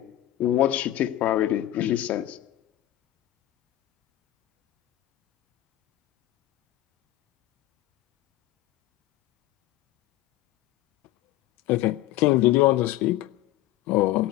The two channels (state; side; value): quieter; right; 14.7 dB